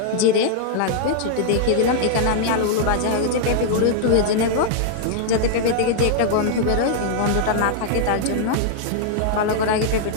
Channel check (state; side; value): different; both; correlation -0.01